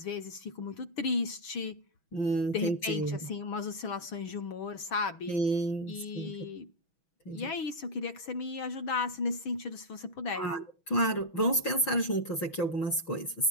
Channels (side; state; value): right; late; 6.2 ms